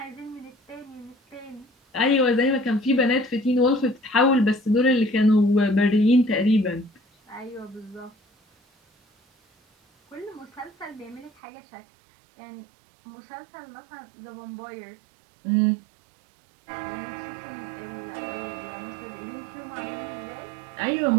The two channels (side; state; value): left; drops out; at 11.3 s